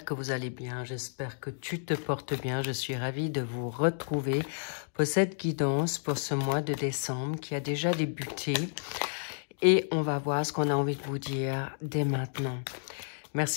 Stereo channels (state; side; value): silent; right; digital silence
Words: que vous allez bien, j'espère que tu te portes bien. Je suis ravie de vous retrouver pour cette guidance pour ce mois de décembre qui a déjà débuté. Et on va voir ce qu'on a envie de vous dire dès maintenant.